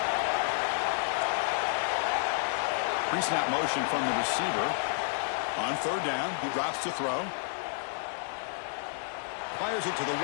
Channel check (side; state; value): right; silent; digital silence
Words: Pre-snap motion from the receiver. On third down, he drops to throw. Fires it to the